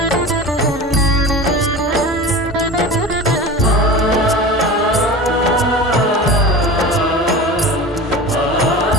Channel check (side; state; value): both; normal; correlation 0.33